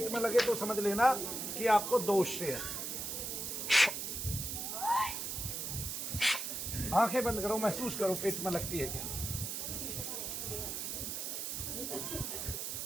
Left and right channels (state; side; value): noise; right; hiss, 4 dB below the sound